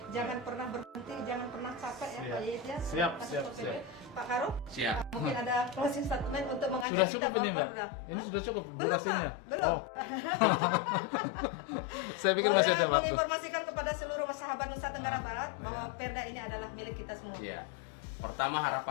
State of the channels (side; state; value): right; drops out; at 6.9 s